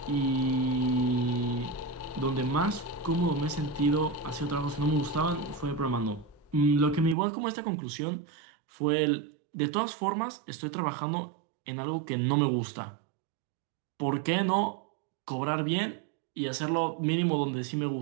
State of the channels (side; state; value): left; drops out; at 7.2 s